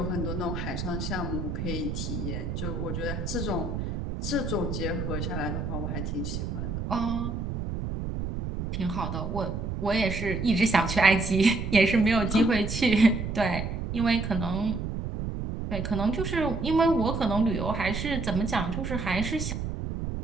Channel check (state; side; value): noise; right; rumble, 4 dB below the sound